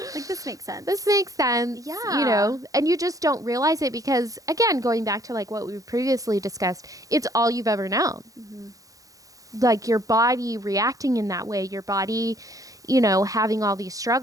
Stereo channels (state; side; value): late; left; 0.17 ms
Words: Like, this makes sense. This makes sense. Yeah. And you just don't realize it because, again, going back to, like, what we previously discussed, it's all you've ever known. Mm-hmm. Like, your body reacting in that way, your body, having all these